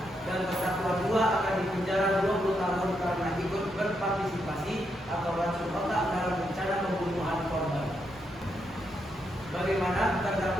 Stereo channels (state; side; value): noise; right; rumble, 26 dB below the sound